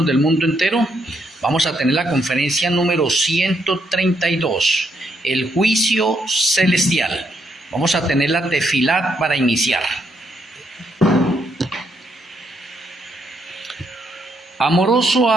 del mundo entero, vamos a tener la conferencia número 132, el juicio celestial. Vamos a tener la tefilat para iniciar. Amoroso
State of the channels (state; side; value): normal; both; correlation 0.75